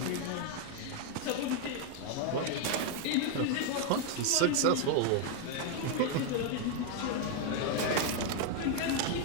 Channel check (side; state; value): both; different; correlation 0.01